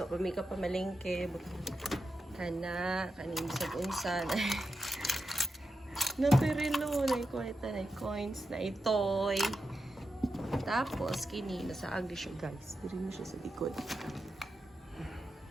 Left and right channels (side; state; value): both; normal; correlation 0.89